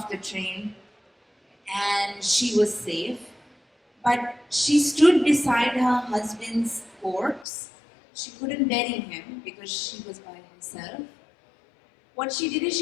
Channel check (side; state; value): right; drops out; at 7.5 s